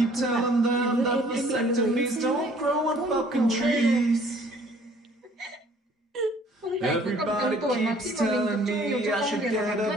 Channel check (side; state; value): both; normal; correlation 0.57